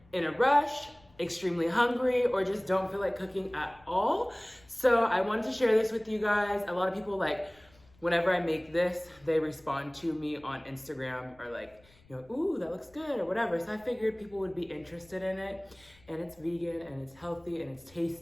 in a rush, extremely hungry, or just don't feel like cooking at all. So I wanted to share this with you guys. A lot of people, like, whenever I make this, they respond to me on Instagram or like, you know, ooh, that looks good or whatever. So I figured people would be interested in it, and it's vegan and it's healthy and it's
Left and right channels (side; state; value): left; noise; rumble, 29 dB below the sound